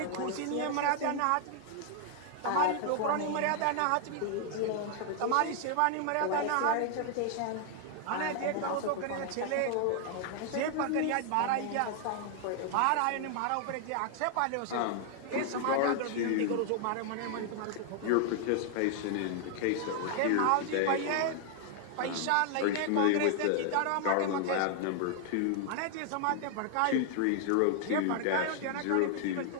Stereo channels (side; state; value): both; different; correlation 0.00